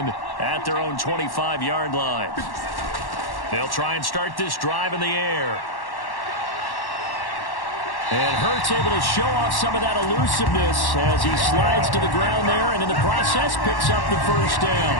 at their own 25-yard line. They'll try and start this drive in the air. And Hurts able to show off some of that elusiveness as he slides to the ground there, and in the process picks up the 1st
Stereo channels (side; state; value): right; late; 1.1 ms